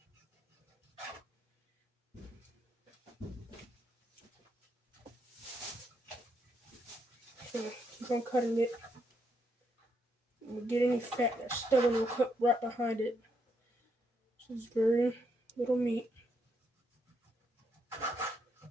So keep on cutting it. And we get any fat that's stubborn, we'll cut right behind it. This is very little meat.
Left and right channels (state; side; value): normal; both; correlation 0.77